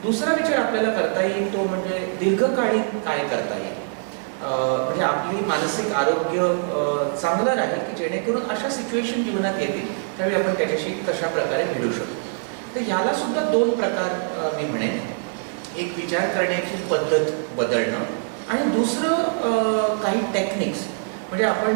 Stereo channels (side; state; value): left; silent; 63 dB below the other